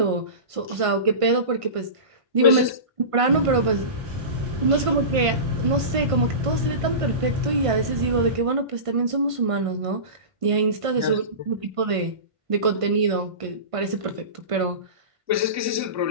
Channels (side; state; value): left; late; 1.5 ms